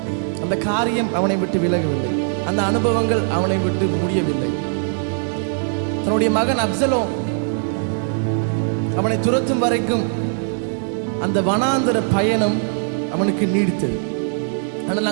அந்த காரியம் அவனை விட்டு விலகவில்லை, அந்த அனுபவங்கள் அவனை விட்டு முடியவில்லை. தன்னுடைய மகன் அப்சலோம் அவனை துரத்தும் வரைக்கும் அந்த வனாந்திர பயணம் அவனுக்கு நீடித்தது. ஆனால்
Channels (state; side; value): silent; left; 65 dB below the other